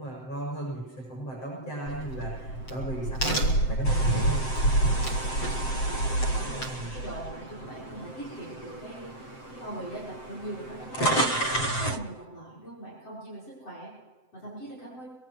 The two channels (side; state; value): right; late; 7.8 ms